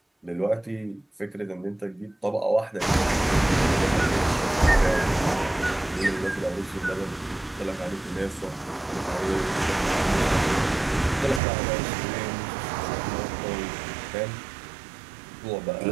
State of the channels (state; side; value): drops out; left; at 11.4 s